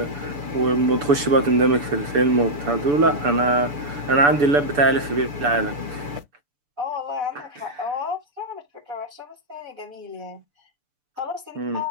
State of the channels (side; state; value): left; late; 6.9 ms